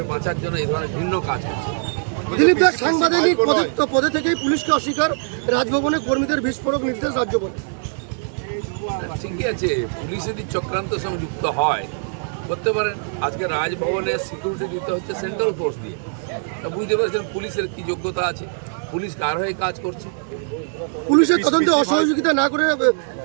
বাঁচার জন্য এই ধরনের ভিন্ন কাজ করছে। দিলীপ দাস, সাংবাদিক পদে থেকেই পুলিশকে অস্বীকার, রাজভবনে কর্মীদের বিস্ফোরক নির্দেশ রাজ্যপাল। ঠিকই আছে, পুলিশ যদি চক্রান্তের সঙ্গে যুক্ত হয় করতে পারেন। আজকে রাজভবনে সিকিউরিটি দিতে হচ্ছে সেন্ট্রাল ফোর্স দিয়ে। বুঝতে পারছেন পুলিশের কি যোগ্যতা আছে, পুলিশ কার হয়ে কাজ করছে। পুলিশের তদন্তে অসহযোগিতা না করে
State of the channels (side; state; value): left; silent; 64 dB below the other